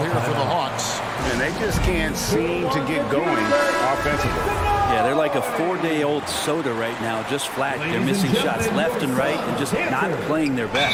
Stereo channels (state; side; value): identical; both; correlation 1.00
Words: for the Hawks. And they just can't seem to get going offensively. Yeah, they're like a 4-day-old soda right now, just flat. They're missing shots left and right and just not playing their